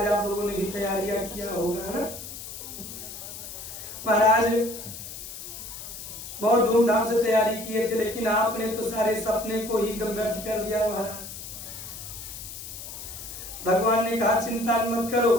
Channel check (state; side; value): noise; left; hiss, 11 dB below the sound